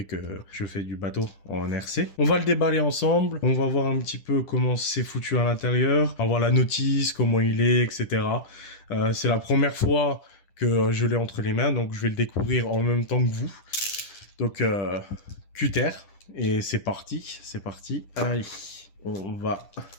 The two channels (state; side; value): late; right; 10 ms